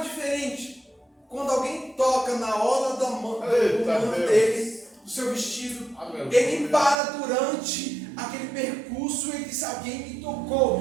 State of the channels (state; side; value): drops out; left; at 7.0 s